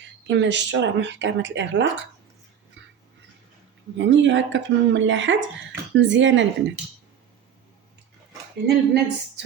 كما شفتوا راه محكمه الاغلاق، يعني هكا في المملحات مزيانه البنات. هنا البنات زدت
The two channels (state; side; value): quieter; left; 8.6 dB